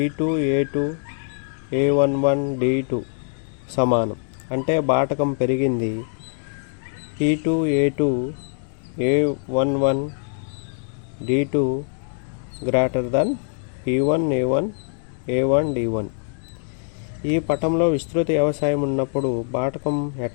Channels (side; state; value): right; silent; digital silence